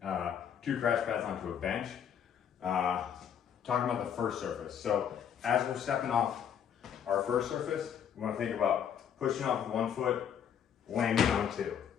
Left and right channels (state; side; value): quieter; right; 8.5 dB